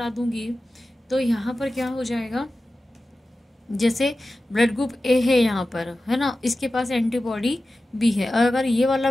दूंगी तो यहाँ पर क्या हो जाएगा, जैसे ब्लड ग्रुप ए है यहाँ पर, है ना, इसके पास एंटीबॉडी बी है, और अगर ये वाला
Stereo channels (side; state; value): both; normal; correlation 0.94